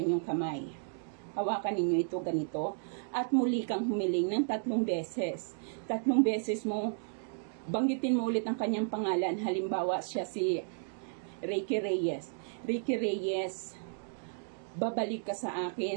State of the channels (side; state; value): left; silent; digital silence